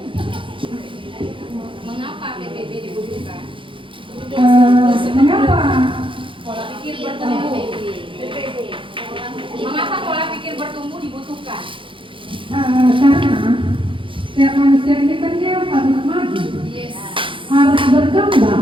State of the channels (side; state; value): left; late; 0.25 ms